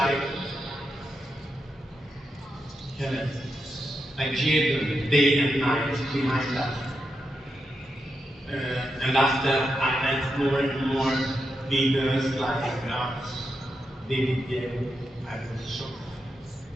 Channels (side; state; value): both; normal; correlation 0.85